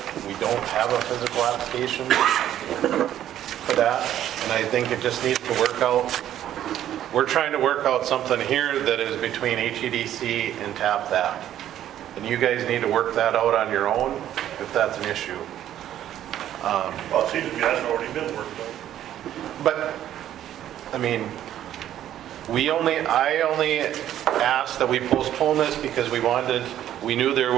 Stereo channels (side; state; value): left; quieter; 11.6 dB